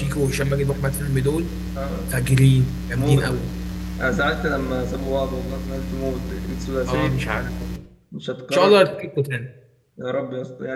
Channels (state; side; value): identical; both; correlation 1.00